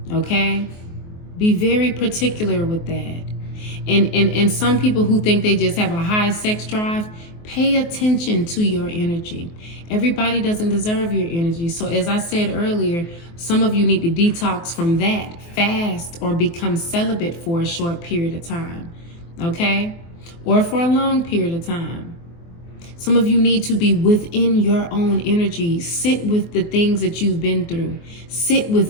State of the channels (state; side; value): late; right; 24 ms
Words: Okay? Be very particular with that. And some people who think they just have a high sex drive, pay attention to your energy. Everybody doesn't deserve your energy. So as I said earlier, some of you need to detox from that, fast, or become celibate for a short period of time, okay? Or for a long period of time. Some of you need to be within your own energy. Sit with the things that you've been through. Sit with